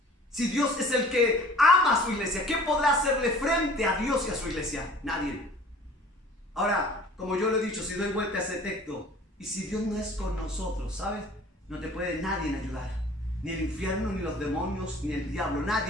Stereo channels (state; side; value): normal; both; correlation 0.48